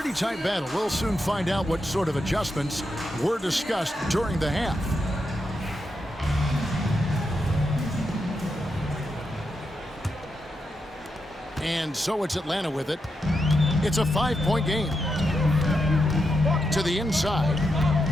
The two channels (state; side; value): normal; both; correlation 0.85